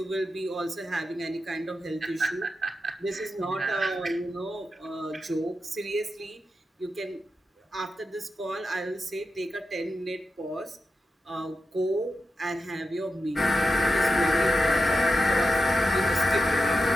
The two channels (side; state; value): both; normal; correlation 0.89